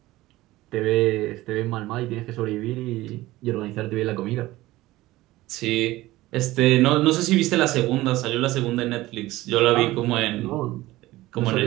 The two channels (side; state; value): left; quieter; 17.6 dB